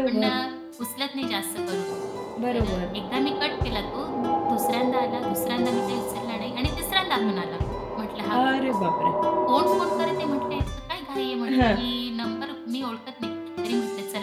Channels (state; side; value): identical; both; correlation 1.00